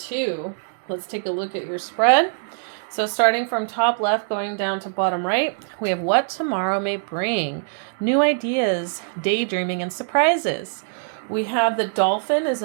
Let's take a look at your spread. So starting from top left, going down to bottom right, we have what tomorrow may bring. New ideas, daydreaming, and surprises. We have the dolphin is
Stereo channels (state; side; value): silent; left; digital silence